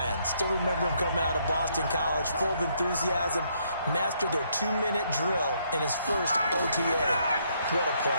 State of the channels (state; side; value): inverted; both; correlation -0.71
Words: Still remember him coming out of Boston College, full of enthusiasm, mastered their 2-minute drill in his first OTA. What a